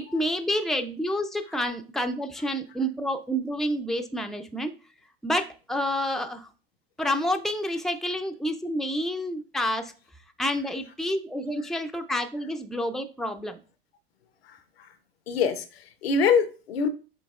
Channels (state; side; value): normal; both; correlation 0.63